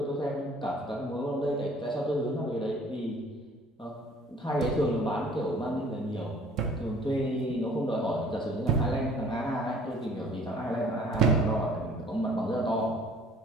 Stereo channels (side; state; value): both; normal; correlation 0.53